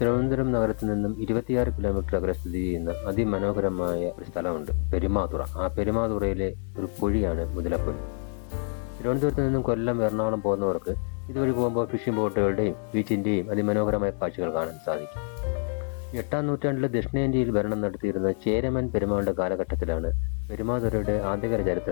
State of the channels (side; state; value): right; silent; 56 dB below the other